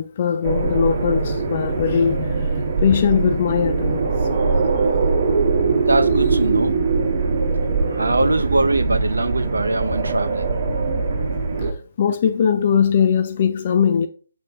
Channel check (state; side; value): inverted; both; correlation -0.74